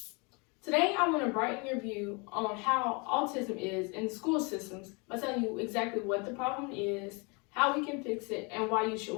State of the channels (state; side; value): quieter; right; 30.8 dB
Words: Today, I want to brighten your view on how autism is in the school systems by telling you exactly what the problem is, how we can fix it, and why you should